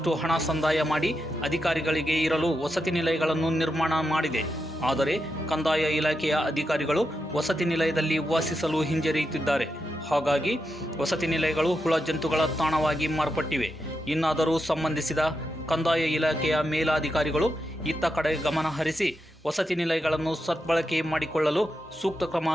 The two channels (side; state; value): both; normal; correlation 0.86